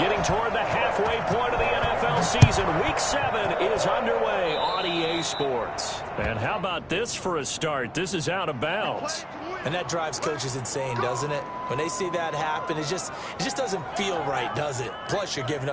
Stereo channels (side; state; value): both; identical; correlation 1.00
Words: toward the halfway point of the NFL season, Week 7 is underway on EA Sports. And how about this for a start? This is out of bounds. And that drives coaches insane, doesn't it? When they see that happen, it just doesn't feel right, does it? Plus, you're giving